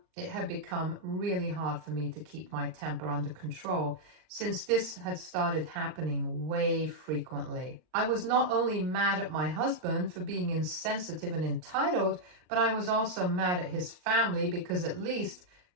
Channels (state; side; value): late; left; 39 ms